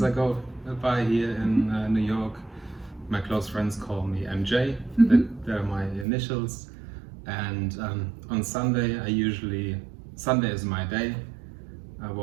I go by here in New York. My close friends call me MJ. They're my initials. And on Sunday, Sunday is my day. I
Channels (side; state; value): left; drops out; at 6.1 s